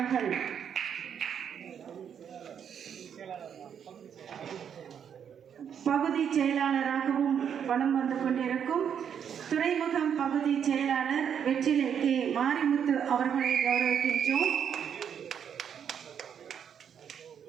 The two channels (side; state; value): left; quieter; 8.1 dB